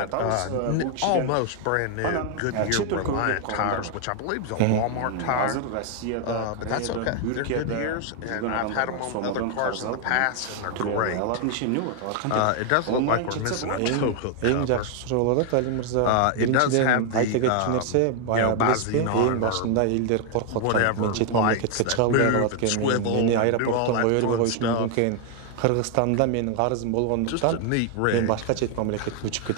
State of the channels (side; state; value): both; different; correlation 0.00